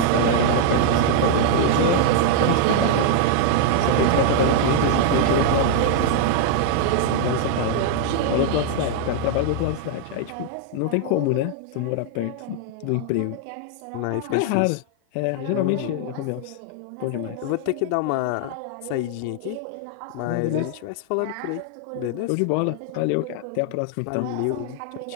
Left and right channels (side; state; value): both; different; correlation 0.00